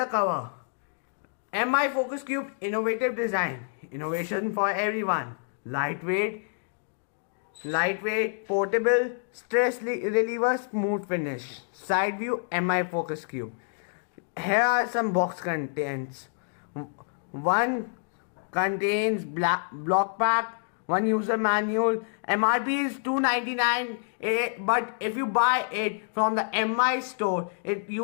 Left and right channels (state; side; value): silent; right; digital silence